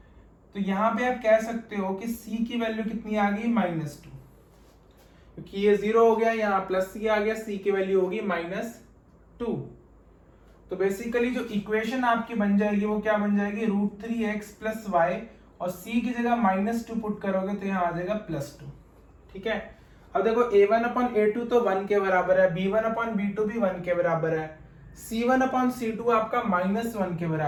तो यहां पे आप कह सकते हो कि c की वैल्यू कितनी आ गई, -2, क्योंकि ये 0 हो गया, यहाँ +c आ गया, c की वैल्यू होगी -2। तो बेसिकली जो इक्वेशन आपकी बन जाएगी वो क्या बन जाएगी, √3x + y, और c की जगह -2 पुट करोगे तो यहाँ आ जाएगा +2। ठीक है, अब देखो a1/a2 तो 1 के बराबर है, b1/b2 भी 1 के बराबर है, c1/c2 आपका -1 के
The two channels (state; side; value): identical; both; correlation 1.00